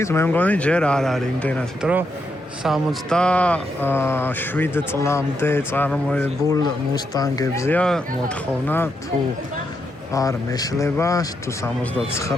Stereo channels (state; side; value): normal; both; correlation 0.81